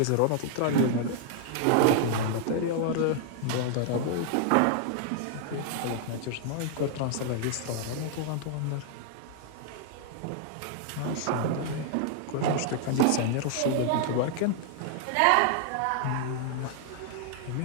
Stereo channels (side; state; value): both; different; correlation -0.01